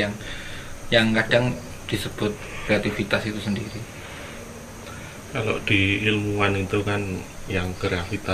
yang kadang disebut kreativitas itu sendiri. Kalau di ilmuwan itu kan yang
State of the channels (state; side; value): identical; both; correlation 1.00